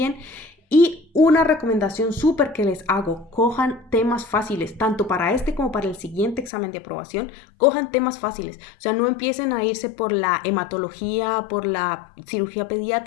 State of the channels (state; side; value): drops out; right; at 6.5 s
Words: Y una recomendación súper que les hago, cojan temas fáciles, tanto para este como para el siguiente examen de aprobación, cojan temas fáciles. O sea, no empiecen a irse por la hematología, por la cirugía